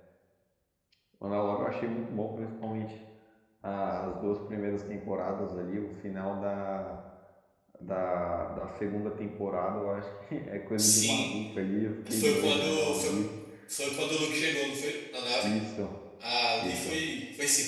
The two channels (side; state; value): both; identical; correlation 1.00